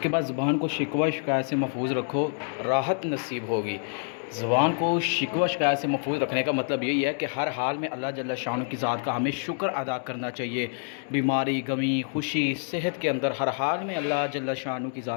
बाद ज़ुबान को शिकवा शिकायत से महफूज़ रखो, राहत नसीब होगी। ज़ुबान को शिकवा शिकायत से महफूज़ रखने का मतलब यही है कि हर हाल में अल्लाह जल्ल शान की ज़ात का हमें शुक्र अदा करना चाहिए। बीमारी, गमी, खुशी, सेहत के अंदर हर हाल में अल्लाह जल्ल शान की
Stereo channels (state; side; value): silent; right; digital silence